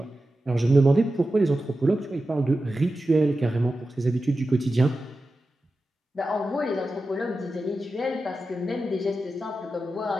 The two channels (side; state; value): both; normal; correlation 0.92